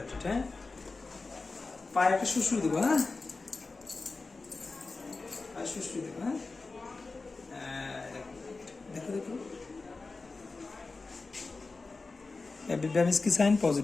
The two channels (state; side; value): quieter; right; 3.8 dB